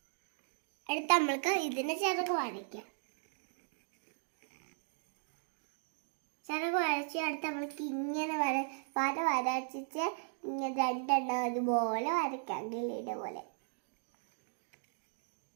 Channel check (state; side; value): silent; left; digital silence